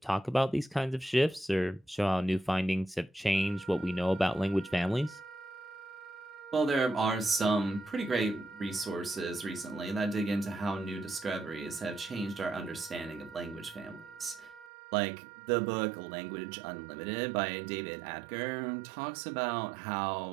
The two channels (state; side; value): drops out; left; at 14.7 s